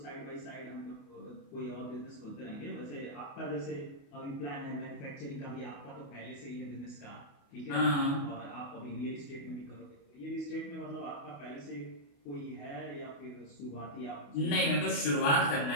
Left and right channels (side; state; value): right; late; 28 ms